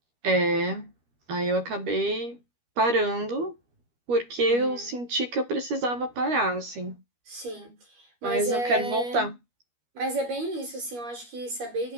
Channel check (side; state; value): left; late; 13 ms